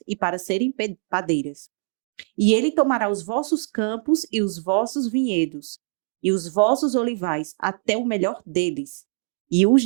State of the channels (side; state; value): left; silent; digital silence